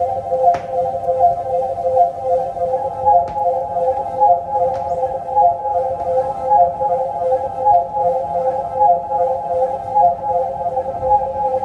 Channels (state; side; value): identical; both; correlation 1.00